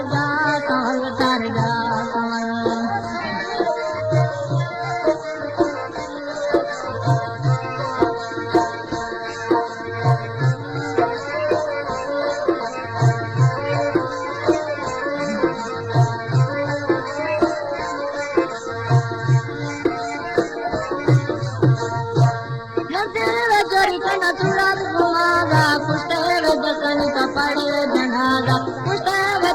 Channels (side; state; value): both; identical; correlation 1.00